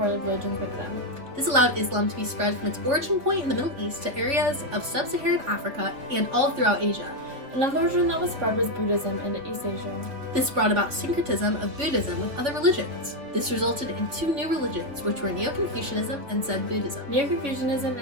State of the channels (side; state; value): left; late; 3.3 ms